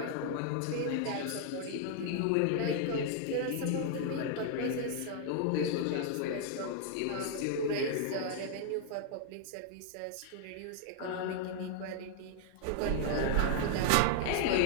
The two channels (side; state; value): both; different; correlation -0.01